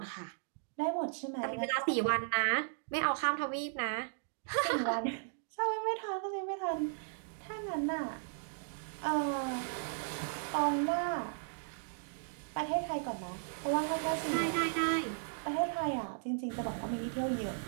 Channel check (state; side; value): silent; left; digital silence